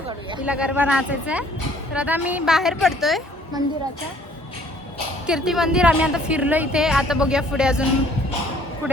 तिला गरबा नाचायचा आहे। तर आता आम्ही बाहेर पडतोय मंदिराच्या. कीर्ती मंदिर आम्ही आता फिरलो इथे. आता बघूया पुढे अजून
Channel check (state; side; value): normal; both; correlation 0.58